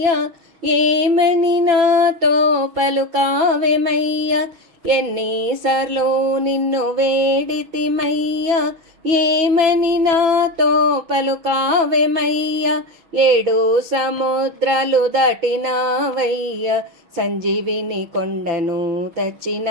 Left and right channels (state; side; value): late; left; 6.0 ms